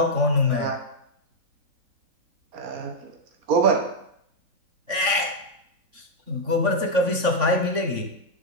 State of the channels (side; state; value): left; late; 3.5 ms